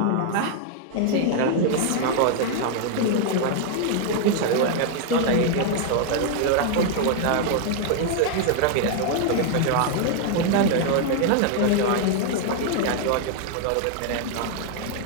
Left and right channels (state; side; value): different; both; correlation 0.00